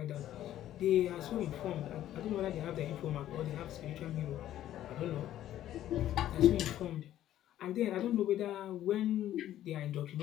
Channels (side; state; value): right; quieter; 12.5 dB